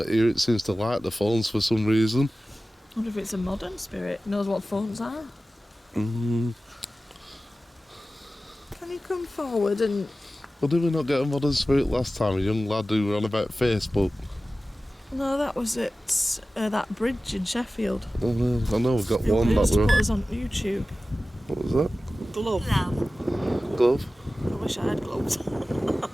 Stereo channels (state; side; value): normal; both; correlation 0.96